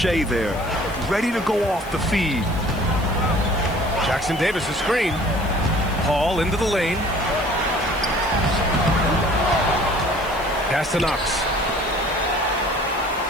there. Ready to go off the feed. Jackson Davis, a screen. Paul into the lane. Pass to Knox.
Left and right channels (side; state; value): left; noise; hiss, 20 dB below the sound